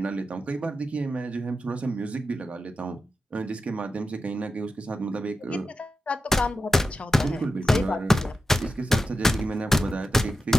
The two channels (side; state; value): both; normal; correlation 0.90